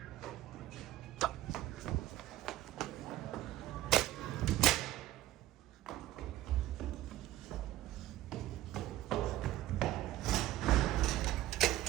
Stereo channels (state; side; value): quieter; left; 14.5 dB